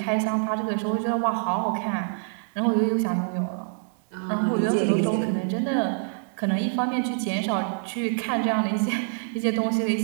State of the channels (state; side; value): silent; left; 61 dB below the other